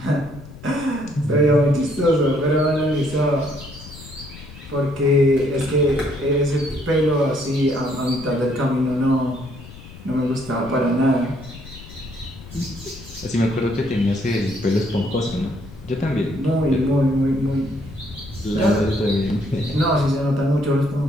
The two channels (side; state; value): left; noise; rumble, 17 dB below the sound